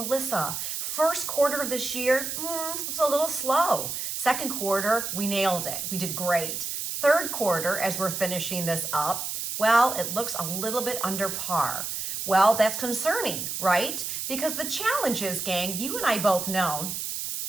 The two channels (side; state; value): right; noise; hiss, 4 dB below the sound